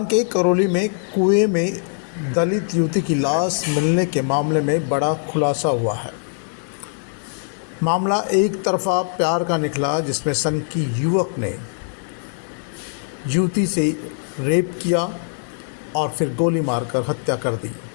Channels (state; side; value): silent; right; 59 dB below the other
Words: के करौली में कुएं में दलित युवती की लाश मिलने के मामले में बड़ा खुलासा हुआ है। मामला एक तरफा प्यार का निकला, जिसमें सनकी युवक ने युवती से रेप किया और फिर गोली मारकर हत्या कर दी।